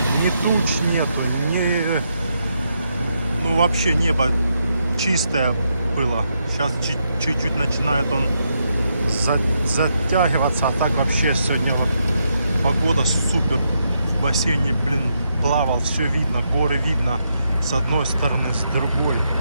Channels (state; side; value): inverted; both; correlation -0.80